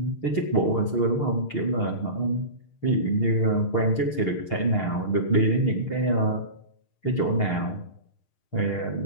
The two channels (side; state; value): right; late; 6.5 ms